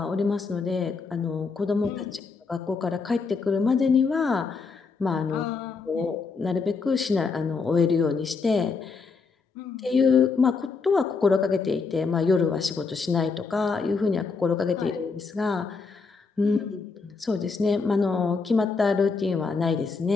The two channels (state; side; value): quieter; right; 4.7 dB